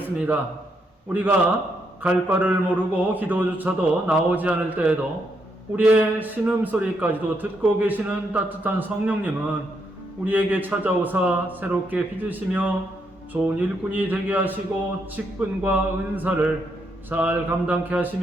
우리가 갈 바를 모르고 기도조차도 나오지 않을 때에도 우리의 신음소리까지도 듣고 계시는 따뜻한 성령님은 우리에게 찾아오사 새롭게 빚으시며 좋은 일꾼이 되게 하시고 직분과 은사를 잘 감당케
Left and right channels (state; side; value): normal; both; correlation 0.77